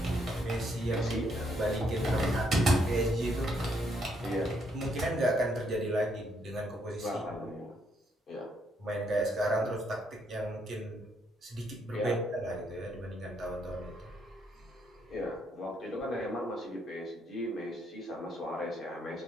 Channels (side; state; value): both; normal; correlation 0.73